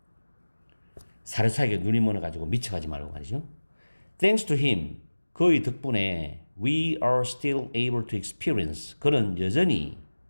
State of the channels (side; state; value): both; inverted; correlation -1.00